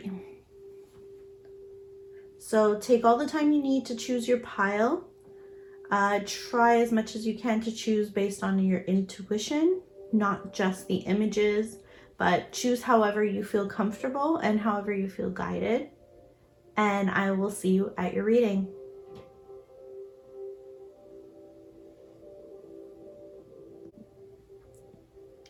So take all the time you need to choose your pile. Try as much as you can to choose based on your intuition, not just the images, but choose however you feel comfortable and however you feel guided. And I will see you at your reading.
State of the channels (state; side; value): identical; both; correlation 1.00